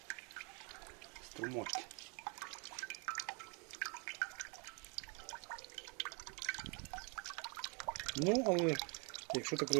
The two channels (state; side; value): quieter; left; 34.3 dB